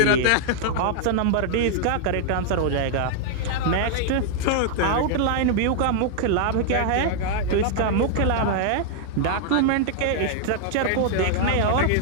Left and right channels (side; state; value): both; different; correlation -0.01